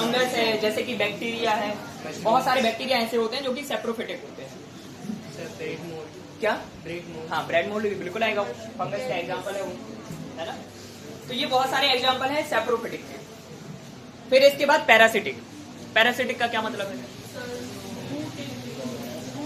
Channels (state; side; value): identical; both; correlation 1.00